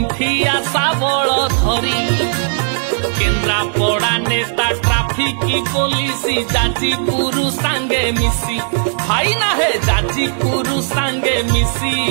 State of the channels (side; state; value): left; silent; 69 dB below the other